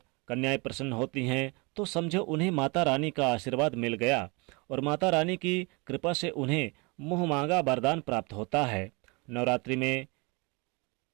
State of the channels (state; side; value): quieter; left; 28.5 dB